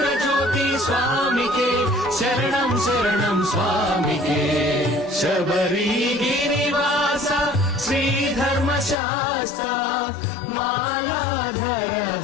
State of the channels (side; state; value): right; drops out; at 9.0 s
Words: జ్యోతి స్వామికే శరణం శరణం స్వామికే శబరిగిరివాస శ్రీధర్మశాస్త్ర మాలాధర